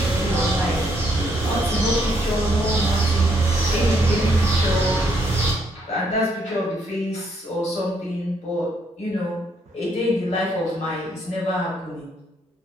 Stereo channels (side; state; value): both; normal; correlation 0.72